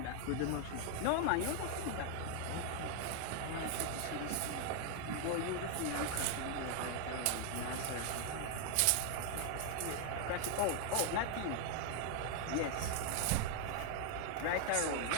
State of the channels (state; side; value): different; both; correlation 0.00